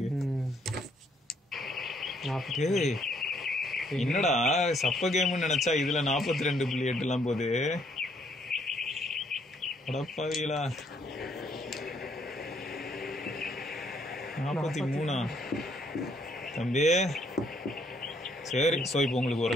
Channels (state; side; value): normal; both; correlation 0.68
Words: என்னடா சப்ப கேம்னு நினைச்சா இதுல 42.8 எல்லாம் போகுது. அடப்பாவீங்களா, 43 தம்பி. சரி, ஸோ இப்போ உங்களுக்கு